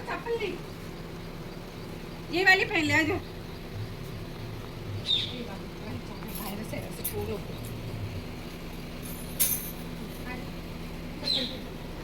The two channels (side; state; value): both; identical; correlation 1.00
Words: ये वाली पहन ले आज.